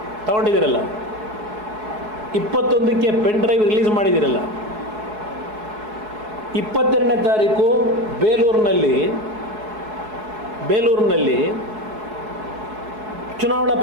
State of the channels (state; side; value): late; left; 4.7 ms